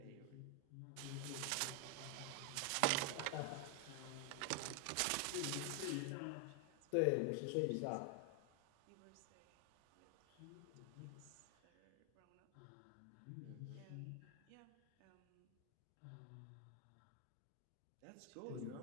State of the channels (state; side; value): different; both; correlation 0.00